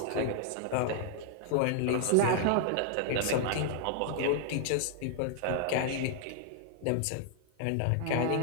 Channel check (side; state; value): both; different; correlation -0.01